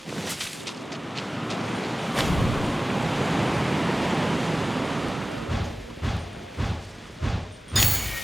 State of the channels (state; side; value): normal; both; correlation 0.97